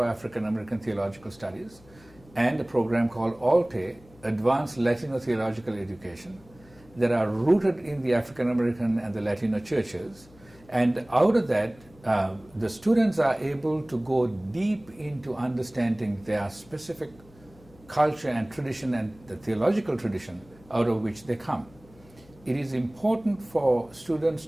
African American Theological Studies, and a program called ALTE, Advanced Latino Theological Education, that are rooted in the African American and the Latino churches. And out of that, the students are able to go deep into understanding their specific culture and tradition and the theological tradition out of which they come. It is important for students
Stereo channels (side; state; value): left; noise; hum, 25 dB below the sound